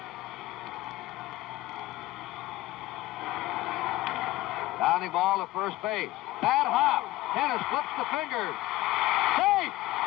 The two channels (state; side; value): quieter; right; 17.3 dB